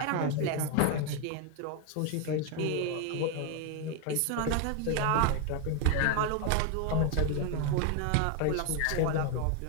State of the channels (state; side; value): different; both; correlation 0.01